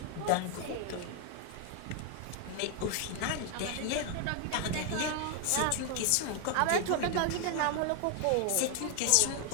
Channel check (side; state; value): both; different; correlation 0.00